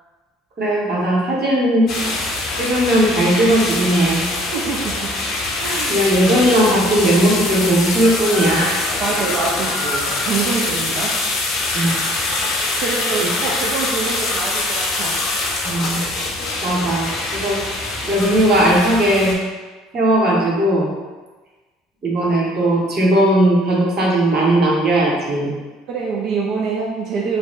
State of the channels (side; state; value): both; normal; correlation 0.57